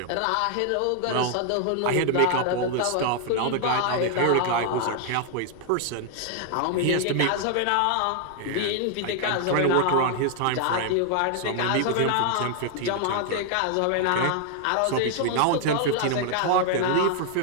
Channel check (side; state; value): both; different; correlation 0.00